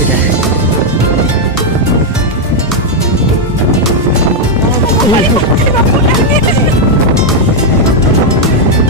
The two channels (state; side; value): normal; both; correlation 0.00